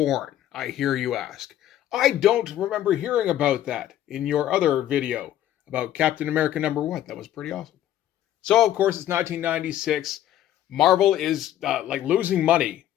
I hear you ask? I don't remember hearing about that in your other video about Captain America #1. That was pretty awesome. So, of course, it's 1996. Marvel is losing money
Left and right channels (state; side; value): quieter; right; 12.3 dB